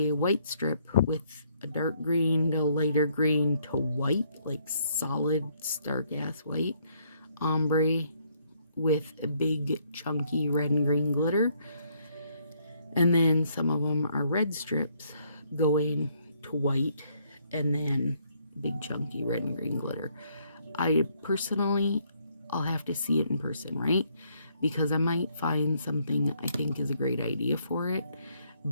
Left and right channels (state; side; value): inverted; both; correlation -0.69